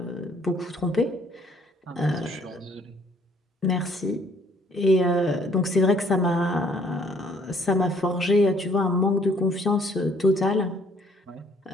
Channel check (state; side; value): normal; both; correlation 0.62